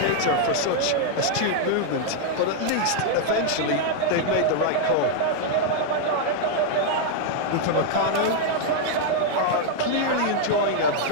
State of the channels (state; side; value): different; both; correlation -0.01